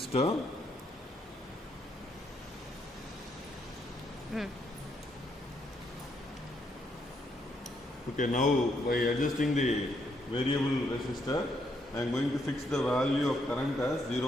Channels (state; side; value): normal; both; correlation 0.75